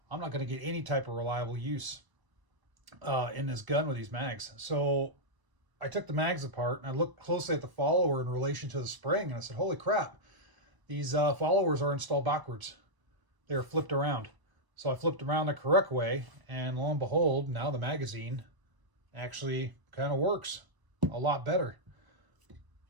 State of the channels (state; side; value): late; left; 1.0 ms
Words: I'm not going to get any type of reliable use in this gun with these mags. So I took the mags apart and I looked closely at the follower in relation to the spring, and I said, holy crap, these followers are installed backwards. They're flipped around. So I flipped around the correct way, and lo and behold, now the magazine actually kind of works a lot better.